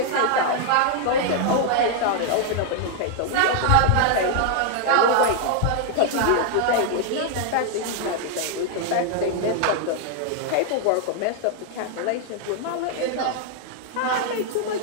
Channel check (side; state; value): both; different; correlation 0.00